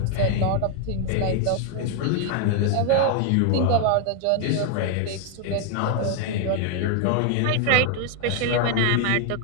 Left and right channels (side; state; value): both; different; correlation 0.01